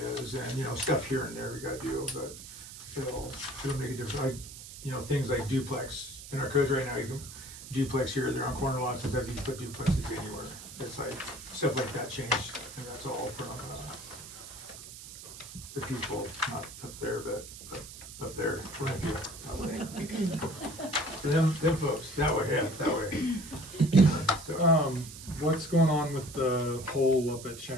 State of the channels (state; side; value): noise; right; hiss, 14 dB below the sound